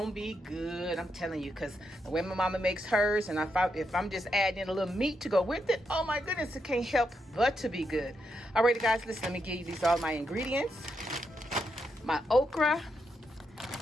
be good, I'm telling you, because the way my mama makes hers, and if I'm just adding a little meat to go with it, oh my goodness, it can't help but to be good. Alrighty guys, listen, let me give you these all my ingredients. My okra,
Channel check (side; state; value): both; normal; correlation 0.82